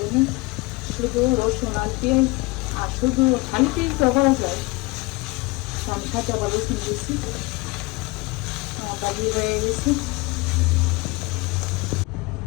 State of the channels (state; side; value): quieter; right; 24.4 dB